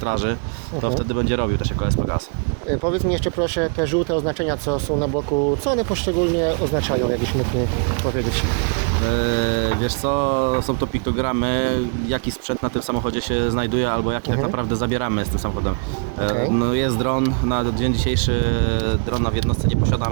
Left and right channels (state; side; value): quieter; left; 39.6 dB